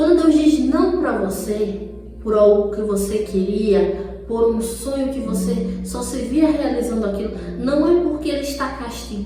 Deus diz não para você, por algo que você queria, por um sonho que você só se via realizando aquilo, não é porque ele está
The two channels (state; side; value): identical; both; correlation 1.00